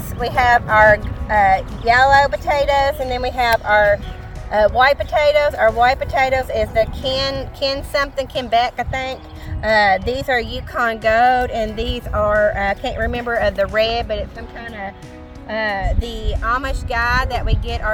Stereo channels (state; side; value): identical; both; correlation 1.00